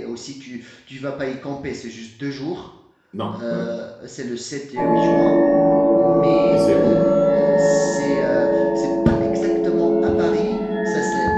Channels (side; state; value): both; identical; correlation 1.00